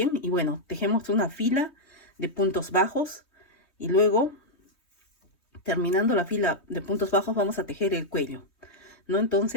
Y bueno, tejemos una fila de puntos bajos y luego, terminando la fila de puntos bajos, vamos a tejer el cuello, ¿no?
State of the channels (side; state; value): right; late; 3.2 ms